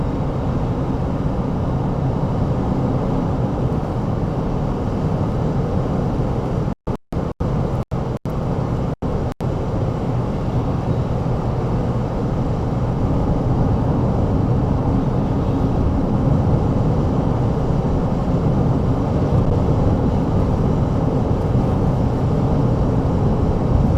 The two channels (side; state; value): both; identical; correlation 1.00